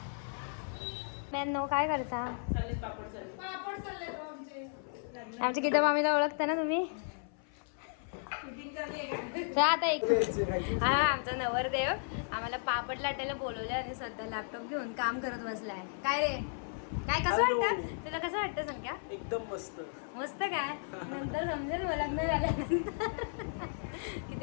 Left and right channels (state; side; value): silent; right; 55 dB below the other